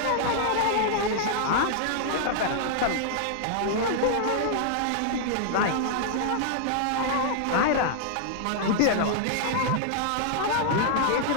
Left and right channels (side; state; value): both; different; correlation -0.01